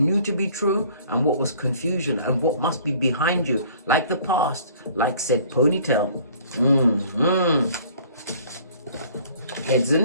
to be true and what was confusion and what must be behind you. Like the past, like said ponytail. Heads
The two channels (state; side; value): inverted; both; correlation -0.53